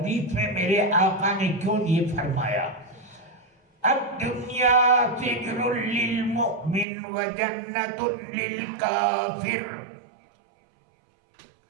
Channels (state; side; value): drops out; left; at 6.9 s